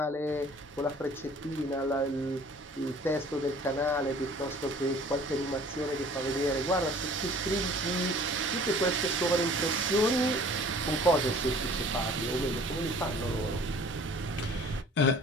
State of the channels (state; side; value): normal; both; correlation 0.50